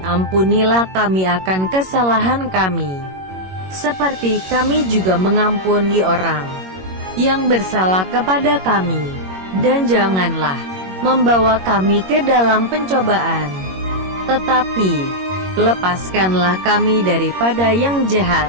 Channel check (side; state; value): left; late; 21 ms